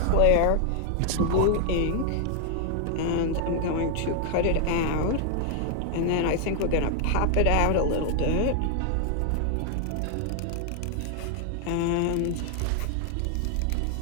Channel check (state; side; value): different; both; correlation 0.00